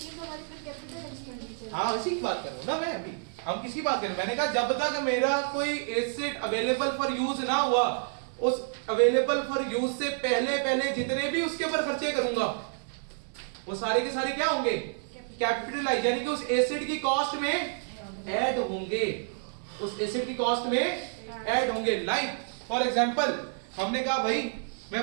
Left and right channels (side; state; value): left; silent; 58 dB below the other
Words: तो हमारी फिर कैपिटल एक्सपेंडिचर। हाँ इसी की बात कर रहा हूँ ना मैं, अभी हम किसकी बात कर रहे हैं, मैंने कहा जब तक मेरा कोई एसेट अवेलेबल फॉर यूज ना हुआ, उस अवेलेबल फॉर यूज से पहले जितने भी उसके ऊपर खर्चे करूंगा वो सारे के सारे क्या होंगे, कैपिटलाइज, यानी कि उस एसेट की कॉस्ट में ऐड होंगे, उस एसेट की कॉस्ट में ऐड होंगे। लाइक फॉर एग्जांपल हमने कहा भाई मैं